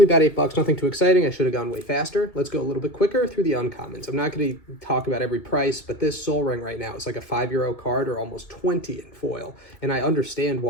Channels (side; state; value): right; late; 2.1 ms